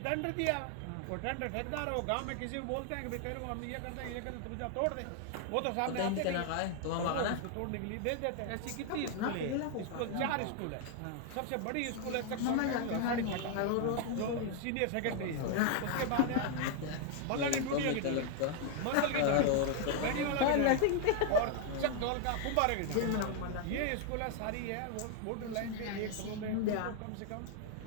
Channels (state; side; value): different; both; correlation 0.00